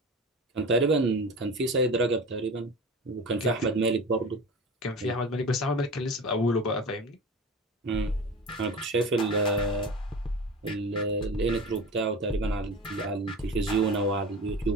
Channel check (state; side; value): normal; both; correlation 0.32